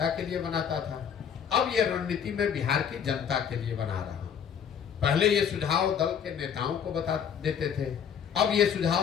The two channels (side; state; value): right; quieter; 8.0 dB